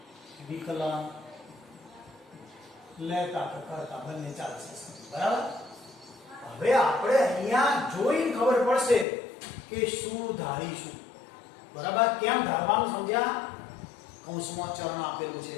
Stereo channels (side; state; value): right; drops out; at 9.1 s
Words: વિકલન લેતા કરતા બંને ચાલશે, બરાબર। હવે આપણે અહીંયા જોઈને ખબર પડશે કે શું ધારીશું, બરાબર। કેમ ધારવાનું સમજ્યા? કૌંસમાં ચરણ આપેલું છે,